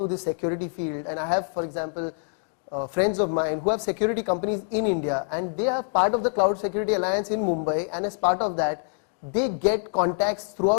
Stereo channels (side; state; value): right; silent; digital silence